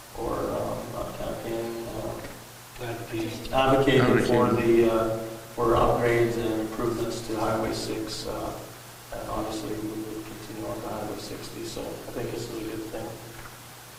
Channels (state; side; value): identical; both; correlation 1.00